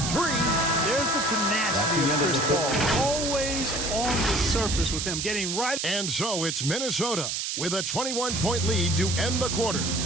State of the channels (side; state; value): right; noise; hiss, 2 dB below the sound